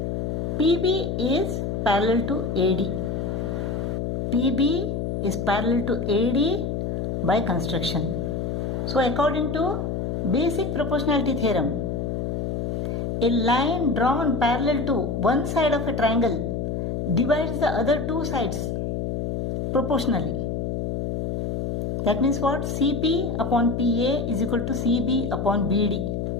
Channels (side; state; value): left; noise; hum, 2 dB below the sound